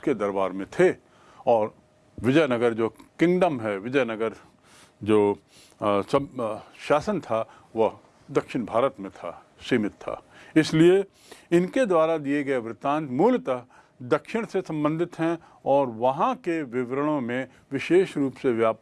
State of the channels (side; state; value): both; identical; correlation 1.00